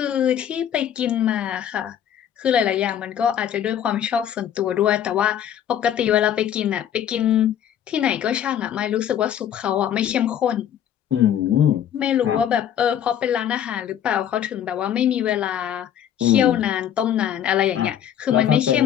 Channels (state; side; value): quieter; right; 9.9 dB